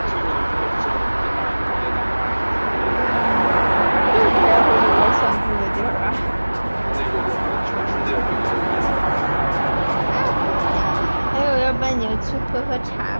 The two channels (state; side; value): inverted; both; correlation -1.00